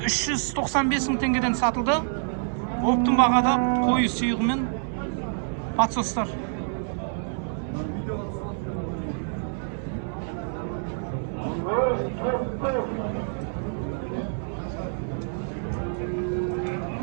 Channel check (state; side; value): silent; left; 60 dB below the other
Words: мың теңгеден сатылды. Оптың бағада қойы сүйғымен подсостар.